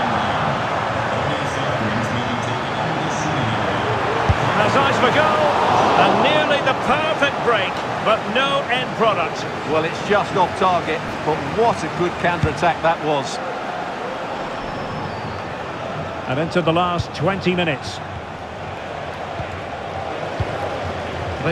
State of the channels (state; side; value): identical; both; correlation 1.00